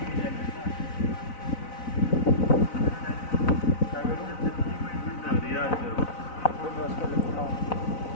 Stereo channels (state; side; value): late; right; 4.0 ms